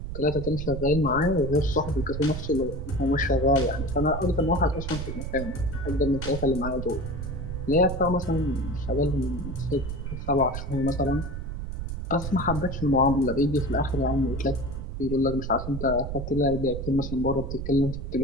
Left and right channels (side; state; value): right; noise; rumble, 6 dB below the sound